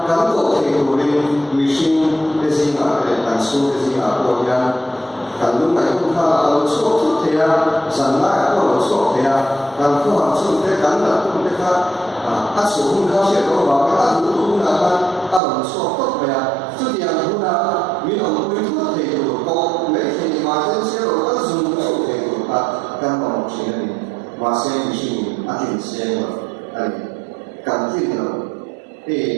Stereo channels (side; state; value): left; drops out; at 15.4 s